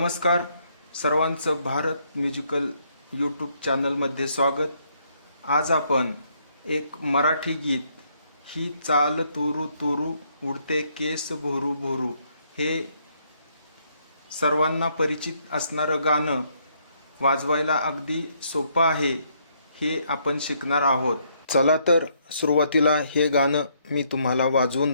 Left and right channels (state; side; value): inverted; both; correlation -0.71